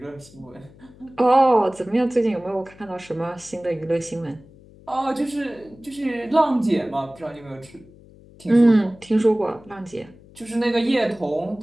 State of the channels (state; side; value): noise; left; hum, 24 dB below the sound